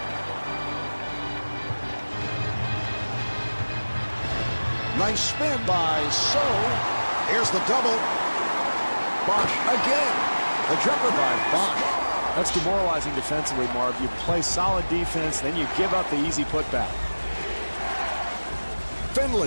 Nice spin by So. Here's the double. Bosch again. The jumper by Bosch. That's demoralizing defensively, Marv. You play solid defense, then you give up the easy putback.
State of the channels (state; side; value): inverted; both; correlation -1.00